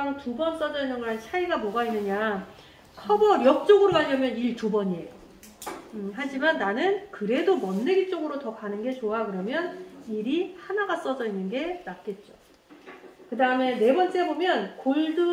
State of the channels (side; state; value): both; identical; correlation 1.00